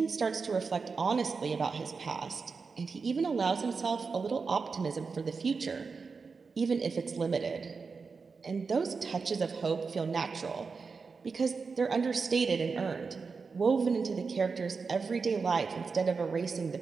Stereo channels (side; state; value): left; quieter; 4.9 dB